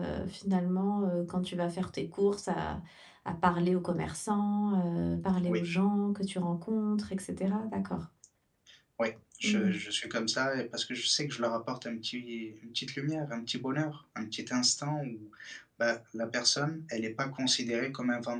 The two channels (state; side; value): identical; both; correlation 1.00